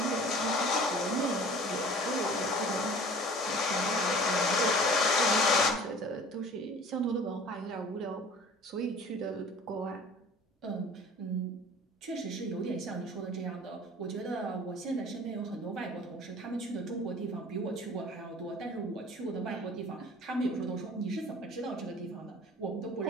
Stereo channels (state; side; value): normal; both; correlation 0.46